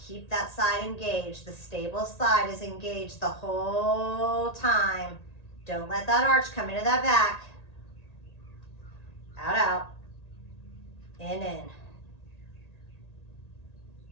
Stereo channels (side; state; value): right; late; 1.8 ms